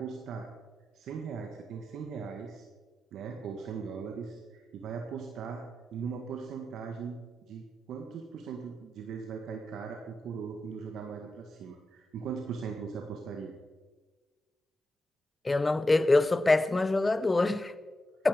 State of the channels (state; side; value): normal; both; correlation 0.90